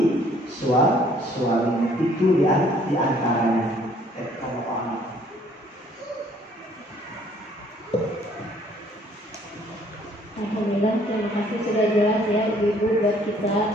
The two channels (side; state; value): both; normal; correlation 0.60